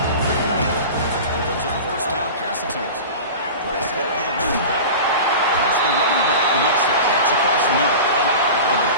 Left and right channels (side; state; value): both; inverted; correlation -0.33